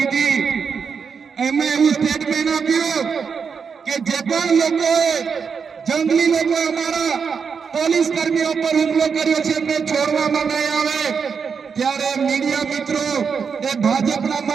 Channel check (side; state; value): left; quieter; 6.0 dB